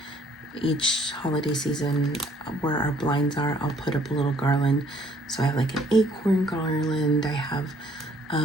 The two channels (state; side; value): normal; both; correlation 0.62